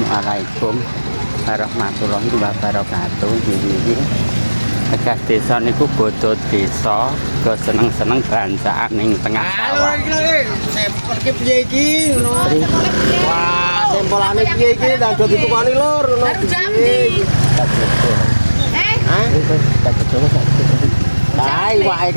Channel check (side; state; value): both; inverted; correlation -1.00